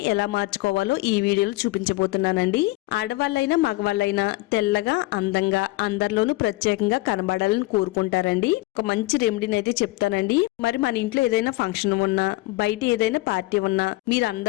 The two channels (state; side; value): quieter; right; 20.4 dB